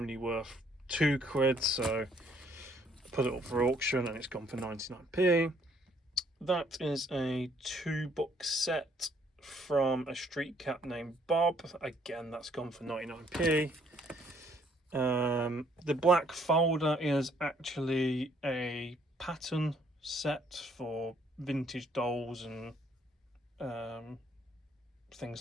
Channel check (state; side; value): normal; both; correlation 0.65